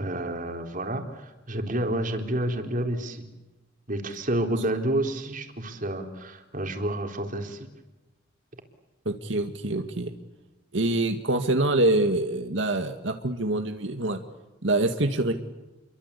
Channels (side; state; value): both; normal; correlation 0.25